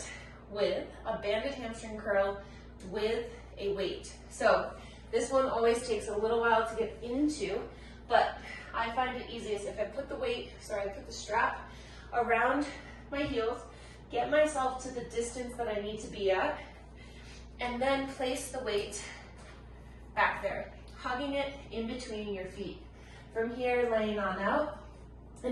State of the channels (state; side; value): identical; both; correlation 1.00